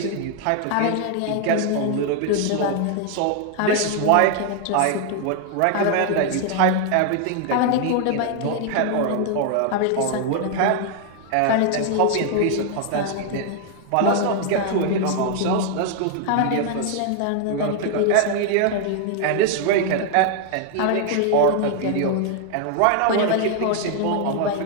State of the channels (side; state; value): both; different; correlation 0.00